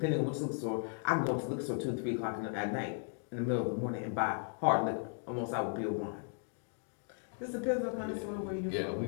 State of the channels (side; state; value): right; silent; 54 dB below the other